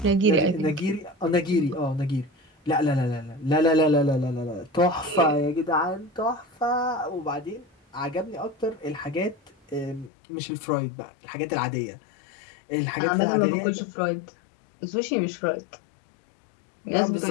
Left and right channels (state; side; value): drops out; right; at 10.1 s